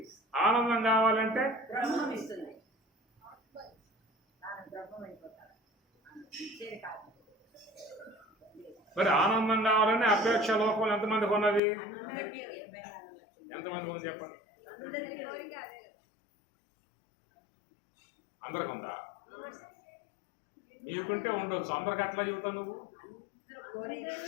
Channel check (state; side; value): drops out; right; at 11.6 s